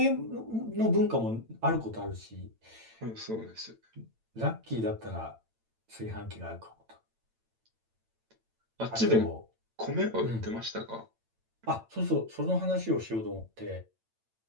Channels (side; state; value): left; late; 8.9 ms